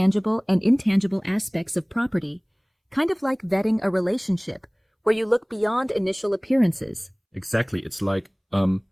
and intangible aspects of property, kind of like vetting a relationship, where you look beyond initial appearances. Exactly. It's like,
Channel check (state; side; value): identical; both; correlation 1.00